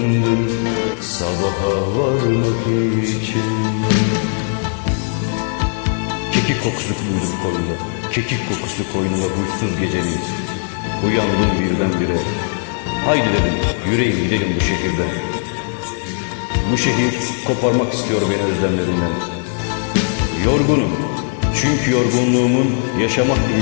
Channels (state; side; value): silent; right; 62 dB below the other